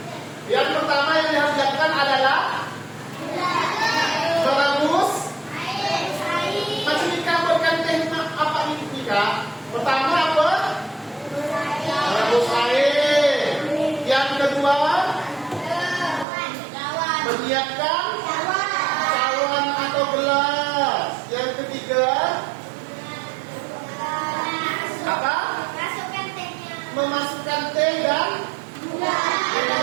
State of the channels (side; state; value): left; drops out; at 16.2 s